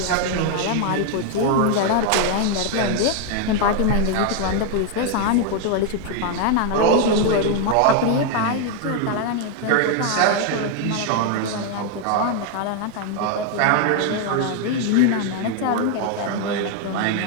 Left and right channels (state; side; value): different; both; correlation 0.00